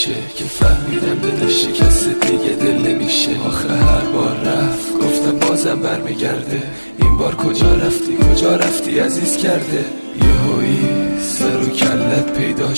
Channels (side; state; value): both; inverted; correlation -1.00